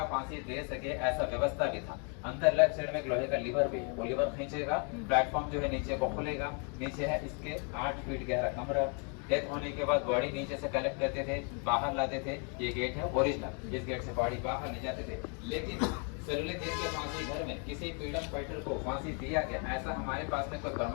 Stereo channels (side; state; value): right; quieter; 38.2 dB